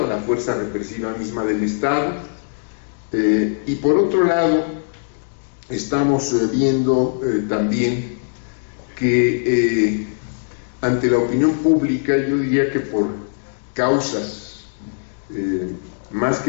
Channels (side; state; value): right; silent; digital silence